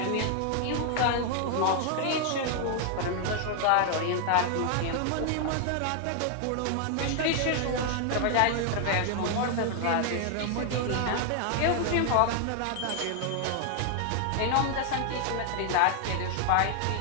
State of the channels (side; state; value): both; different; correlation 0.00